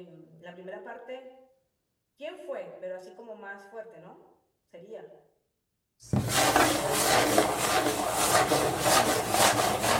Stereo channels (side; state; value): both; identical; correlation 1.00